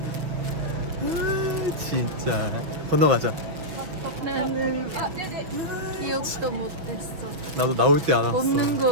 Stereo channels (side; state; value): left; late; 6.1 ms